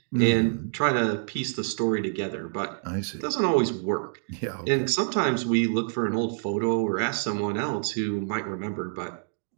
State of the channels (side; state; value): left; silent; digital silence